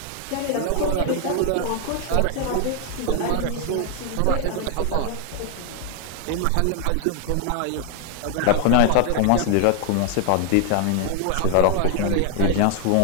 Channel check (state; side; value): different; both; correlation 0.00